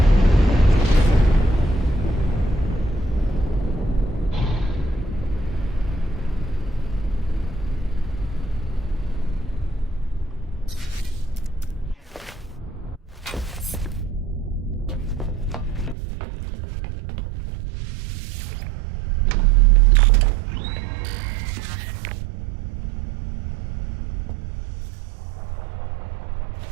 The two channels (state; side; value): drops out; left; at 16.0 s